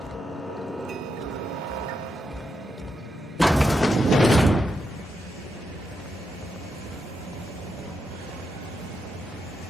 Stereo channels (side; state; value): both; normal; correlation 0.84